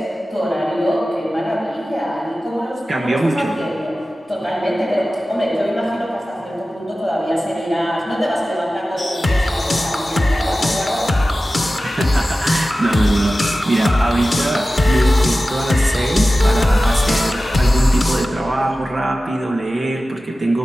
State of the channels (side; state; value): both; normal; correlation 0.95